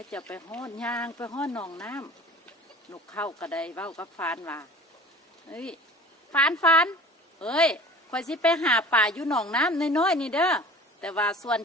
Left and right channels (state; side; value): normal; both; correlation 0.42